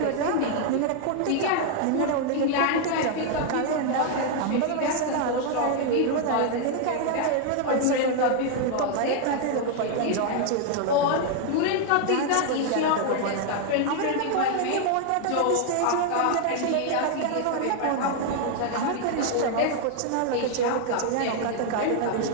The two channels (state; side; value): different; both; correlation 0.00